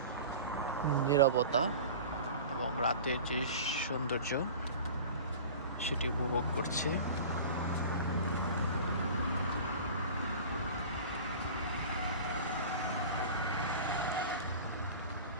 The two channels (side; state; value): both; inverted; correlation -0.38